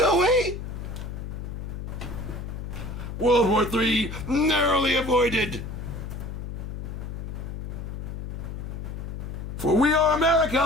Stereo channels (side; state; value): left; noise; hum, 7 dB below the sound